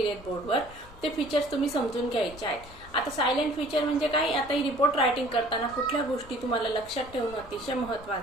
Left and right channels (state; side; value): noise; left; rumble, 19 dB below the sound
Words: बोर्डवर. ते फीचर्स तुम्ही समजून घ्यायचे आहेत. आता सायलेंट फीचर म्हणजे काय, आता ही रिपोर्ट रायटिंग करताना कुठल्या गोष्टी तुम्हाला लक्षात ठेवणं अतिशय